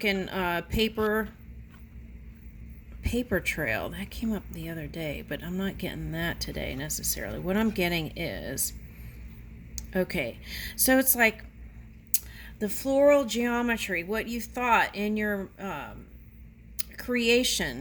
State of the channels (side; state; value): both; identical; correlation 1.00